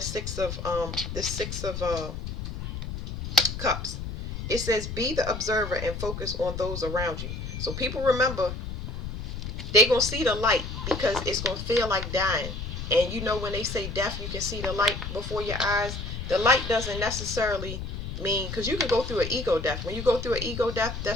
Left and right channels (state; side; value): noise; left; rumble, 6 dB below the sound